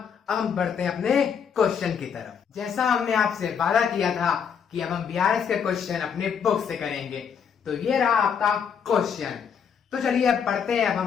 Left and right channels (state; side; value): quieter; right; 7.2 dB